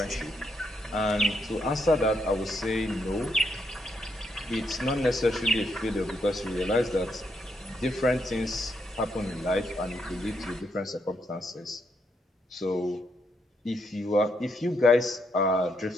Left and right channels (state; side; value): normal; both; correlation 0.77